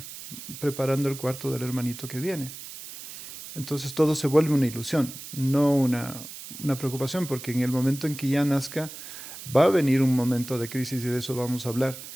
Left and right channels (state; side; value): noise; right; hiss, 12 dB below the sound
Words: preparando el cuarto del hermanito que viene. Entonces todo se vuelve una ilusión, no una preocupación, porque en el momento en que ya nazca va a venir un momento de crisis, y de eso vamos a hablar,